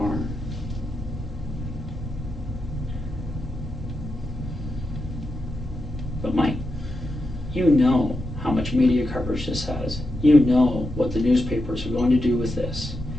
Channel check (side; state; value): both; normal; correlation 0.87